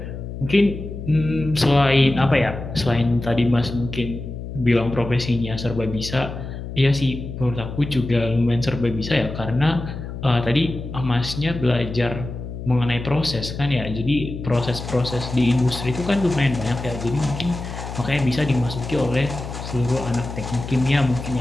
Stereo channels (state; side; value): noise; left; hum, 8 dB below the sound